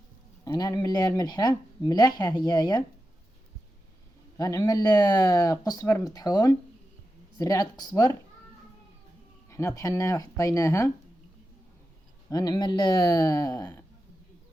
انا نعمل ليها الملحه ملاحه. هي غنعمل قزبر مطحون، زريعه قزبر حنا طحناها وحطيناها. غنعمل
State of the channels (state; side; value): normal; both; correlation 0.90